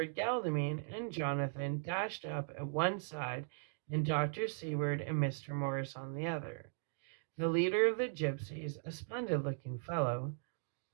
Godalming and Jonathan dashed up at one side, and Dr. Seward and Mr. Morris on the other. The leader of the gypsies, a splendid-looking fellow,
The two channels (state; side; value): silent; left; digital silence